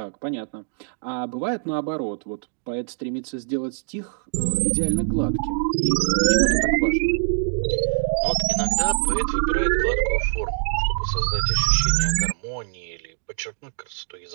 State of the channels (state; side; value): silent; left; digital silence